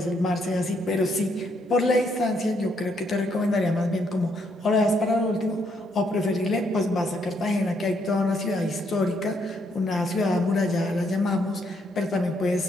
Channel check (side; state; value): both; normal; correlation 0.73